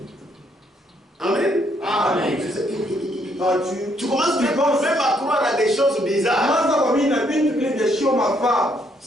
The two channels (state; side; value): normal; both; correlation 0.71